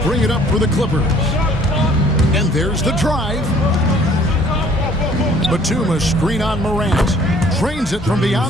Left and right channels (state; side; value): normal; both; correlation 0.56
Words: bring it up for the Clippers. And there's the drive. Batum, a screen on Morant. Drains it from